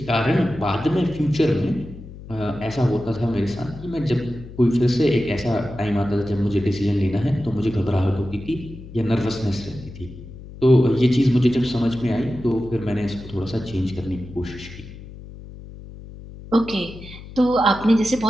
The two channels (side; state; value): left; noise; hum, 15 dB below the sound